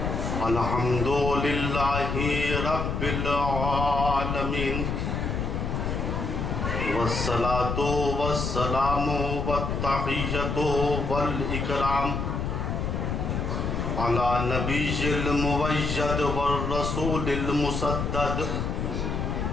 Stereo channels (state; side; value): noise; left; rumble, 2 dB below the sound